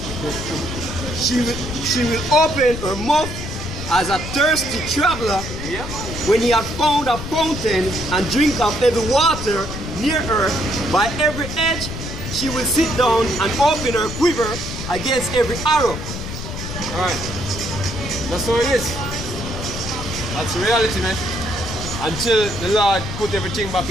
She will open her mouth as a thirsty traveler. Yeah. When he had found a fountain and drink of every water near her, by every edge she will sit down and open her quiver against every arrow. Alright. That's how it is. That's the reality, man. Until the Lord put everything back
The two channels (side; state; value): left; noise; rumble, 8 dB below the sound